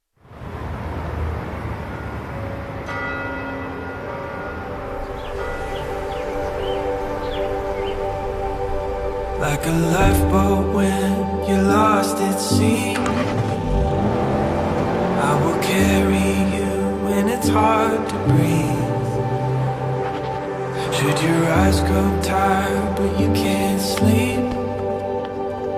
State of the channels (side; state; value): both; identical; correlation 1.00